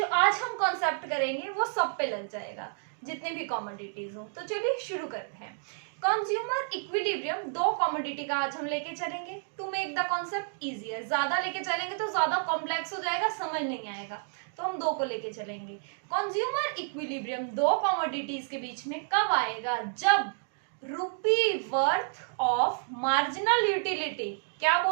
आज हम कॉन्सेप्ट करेंगे वो सब पे लग जाएगा, जितने भी कमोडिटीज हो। तो चलिए शुरू करते हैं। कंज्यूमर इक्विलिब्रियम, दो कमोडिटी का आज हम लेके चलेंगे to make the concept easier. ज्यादा लेके चलेंगे तो ज्यादा कॉम्प्लेक्स हो जाएगा, समझ नहीं आएगा, तो हम दो को लेके चलेंगे। कंज्यूमर इक्विलिब्रियम दो कमोडिटीज के बीच में कब आएगा? जब rupee worth of marginal utility, क्या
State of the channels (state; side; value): silent; left; digital silence